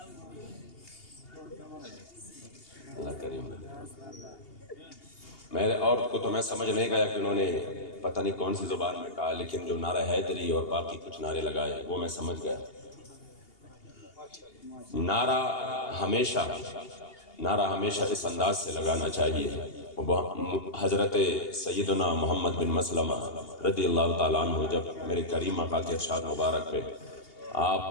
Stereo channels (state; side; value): late; right; 2.8 ms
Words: اللہ کریم میرے اور کو تو میں سمجھ نہیں گیا کہ انہوں نے پتہ نہیں کون سی زبان میں کہا، لیکن جو نعرہ حیدری اور باقی کچھ نعرے لگائے وہ میں سمجھ گیا۔ نعرہ ہمیشہ اس انداز سے لگانا چاہیے۔ حضرت سیدنا محمد بن مسلمہ رضی اللہ تعالیٰ عنہ جب میرے کریم آقا کے ارشاد مبارک پہ